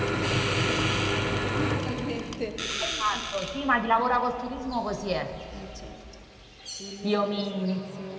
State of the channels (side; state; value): both; identical; correlation 1.00